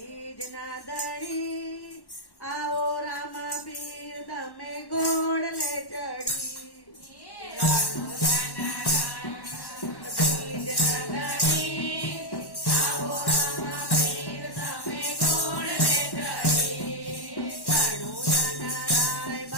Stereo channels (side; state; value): right; late; 1.1 ms